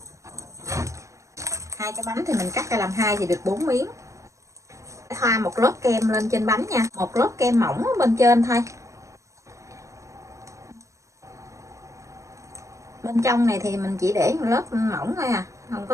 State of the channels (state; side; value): late; left; 0.15 ms